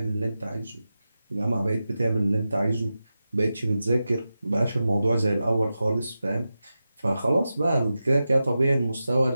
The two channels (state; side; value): inverted; both; correlation -0.92